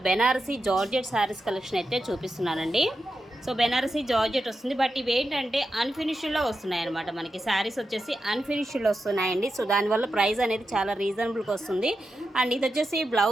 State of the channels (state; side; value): normal; both; correlation 0.89